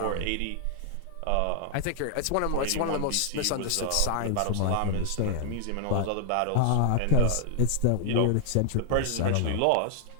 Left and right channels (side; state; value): both; different; correlation 0.00